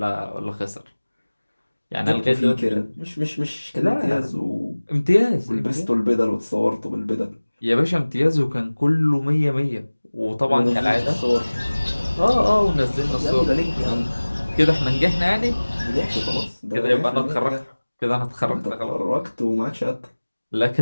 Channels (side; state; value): both; inverted; correlation -1.00